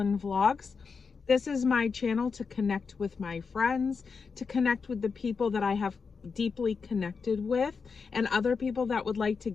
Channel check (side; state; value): right; quieter; 5.3 dB